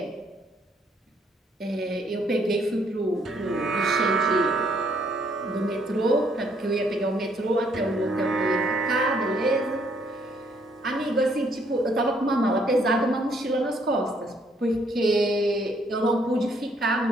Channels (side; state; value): both; normal; correlation 0.68